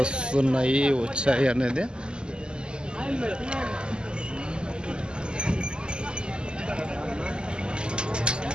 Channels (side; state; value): left; late; 0.048 ms